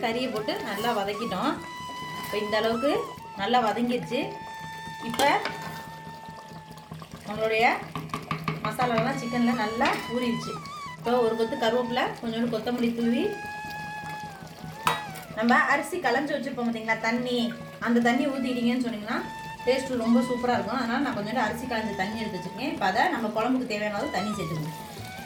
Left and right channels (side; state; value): both; identical; correlation 1.00